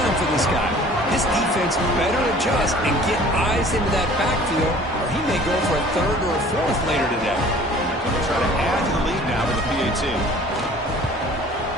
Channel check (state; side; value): normal; both; correlation 0.49